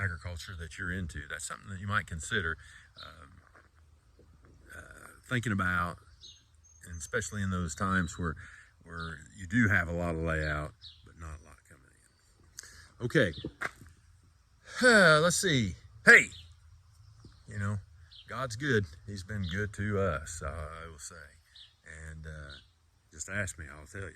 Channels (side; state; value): both; identical; correlation 1.00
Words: agriculture that you're into, that's something that you might consider thinking about, and especially in those times where you do have a lot of layout but not a lot coming in. Okay, let's see. Hey, you know, God's good. He's been good to us, I will say. And just ask me, I'll tell